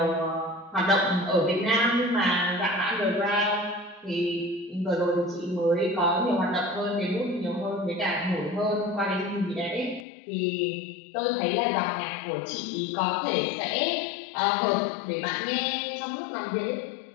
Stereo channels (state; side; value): drops out; right; at 10.1 s